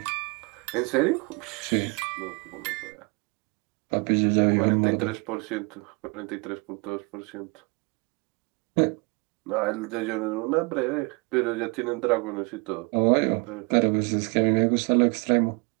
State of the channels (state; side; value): quieter; left; 30.1 dB